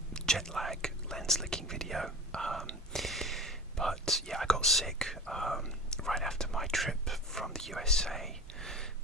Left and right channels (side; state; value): both; normal; correlation 0.34